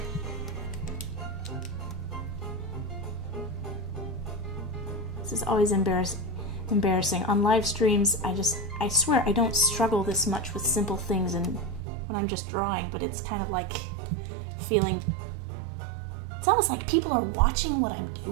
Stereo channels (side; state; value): left; drops out; at 11.8 s